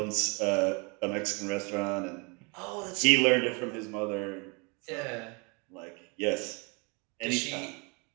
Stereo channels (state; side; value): quieter; left; 31.3 dB